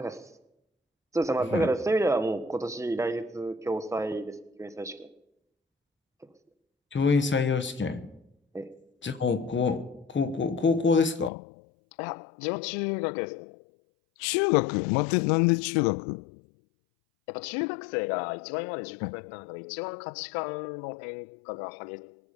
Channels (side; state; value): right; drops out; at 11.3 s